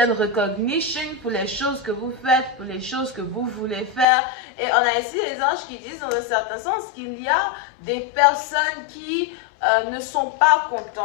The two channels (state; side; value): drops out; right; at 4.0 s